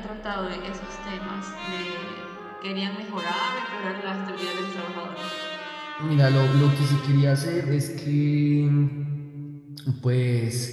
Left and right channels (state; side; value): identical; both; correlation 1.00